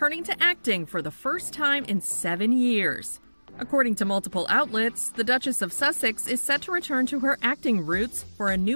to acting for the first time in 7 years. According to multiple outlets, the Duchess of Sussex is set to return to her acting roots for a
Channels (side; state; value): both; inverted; correlation -1.00